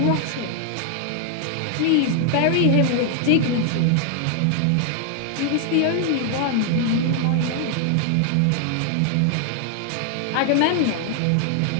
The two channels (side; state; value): both; different; correlation 0.00